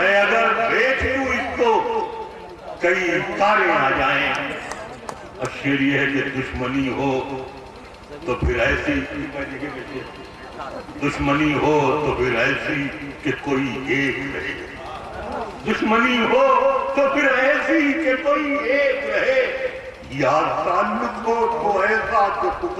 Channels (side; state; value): both; identical; correlation 1.00